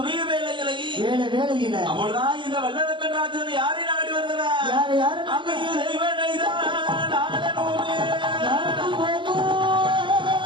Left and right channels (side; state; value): left; late; 0.23 ms